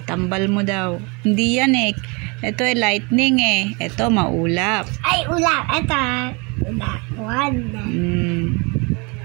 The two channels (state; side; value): quieter; left; 29.9 dB